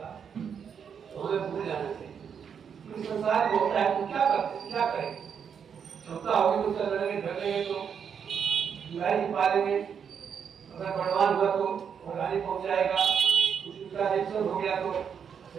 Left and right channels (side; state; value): left; quieter; 7.3 dB